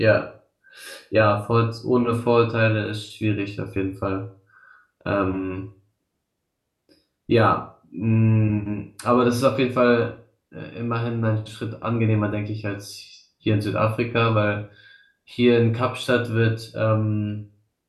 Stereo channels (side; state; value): both; identical; correlation 1.00